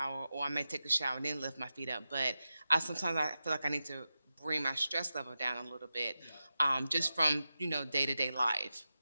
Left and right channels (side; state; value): both; inverted; correlation -0.92